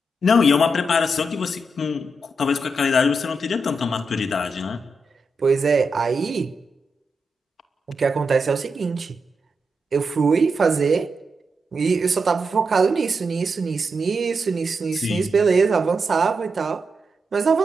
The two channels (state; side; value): normal; both; correlation 0.85